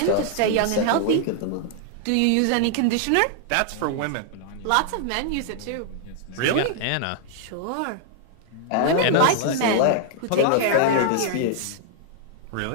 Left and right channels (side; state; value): both; different; correlation -0.01